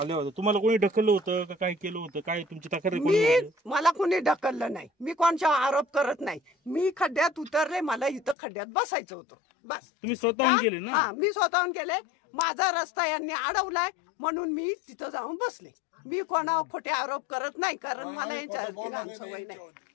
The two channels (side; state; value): right; drops out; at 8.3 s